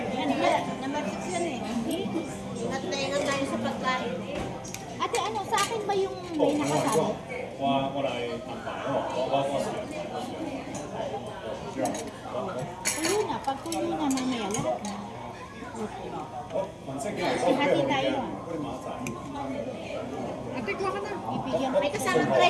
Namatix yan eh. Nataingan tayo sa pagkain eh. Ate, ano, sa akin ba yung may nakasabi? 过来安排哦，我是。 Kulo na, pag kulo na mamaya lahat na. 反正幾嚟 Hati tayo ah. 嗰啲馬仔。 Ate, kuha ka na. Ibigyan May kasamang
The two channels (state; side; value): identical; both; correlation 1.00